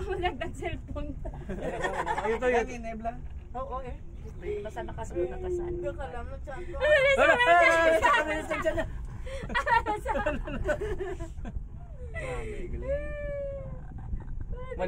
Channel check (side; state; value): both; identical; correlation 1.00